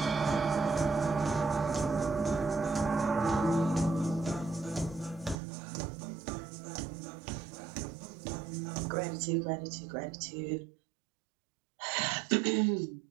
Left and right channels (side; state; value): left; drops out; at 5.4 s